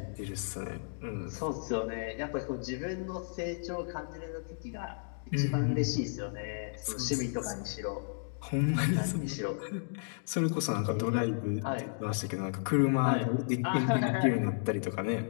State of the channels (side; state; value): right; silent; digital silence